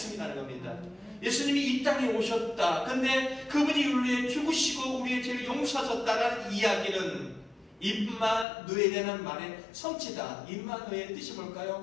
겁니다. 예수님이 이 땅에 오셨다. 근데 그분이 우리를 위해 죽으시고 우리의 죄를 용서하셨다라는 이야기는 임마누엘이라는 말의 성취다. 임마누엘의 뜻이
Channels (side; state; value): right; drops out; at 8.5 s